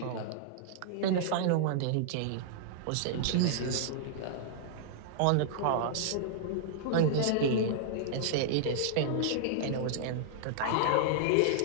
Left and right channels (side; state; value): both; different; correlation -0.01